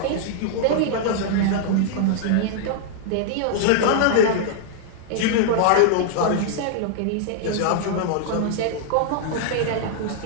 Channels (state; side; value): different; both; correlation -0.01